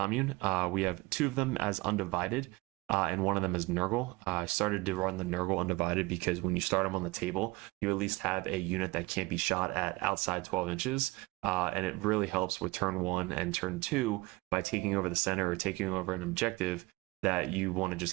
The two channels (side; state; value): left; quieter; 23.0 dB